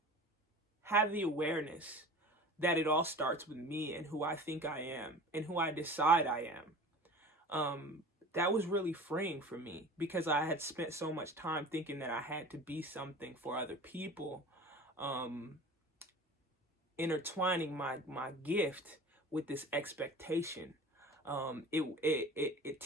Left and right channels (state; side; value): normal; both; correlation 0.39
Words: have the awareness that it all starts with me and who I think I am and who I decide I am, that was really freeing for me, because I had spent so much time thinking that I had to be something for other people, intertwining my gift with this expectation. It